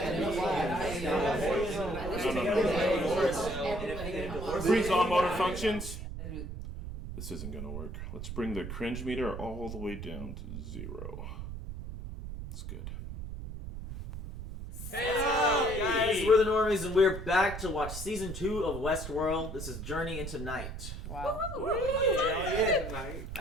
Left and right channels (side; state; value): right; noise; rumble, 8 dB below the sound